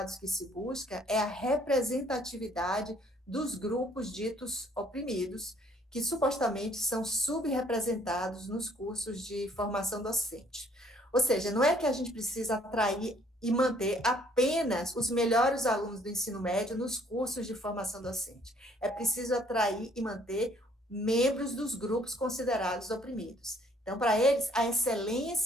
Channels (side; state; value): both; normal; correlation 0.62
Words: que se busca é a representatividade dos grupos ditos oprimidos, que supostamente são subrepresentados nos cursos de formação docente. Ou seja, não é que a gente precisa atrair e manter apenas os melhores alunos do ensino médio nos cursos de formação docente. É preciso atrair e manter membros dos grupos considerados oprimidos. Então, para eles, a